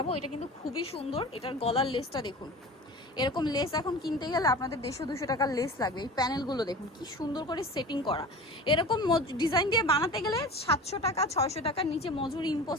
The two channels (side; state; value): both; normal; correlation 0.36